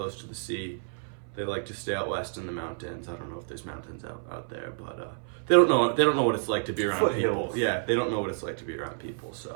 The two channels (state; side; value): silent; left; 57 dB below the other